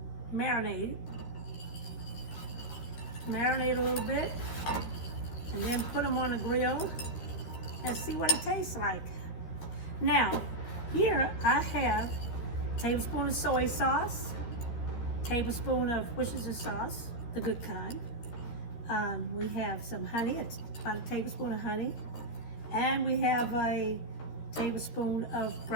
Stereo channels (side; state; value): right; late; 13 ms